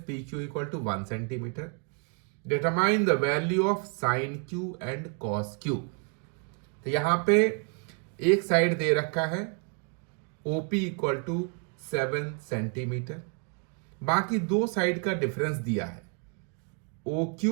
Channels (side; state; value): left; quieter; 39.0 dB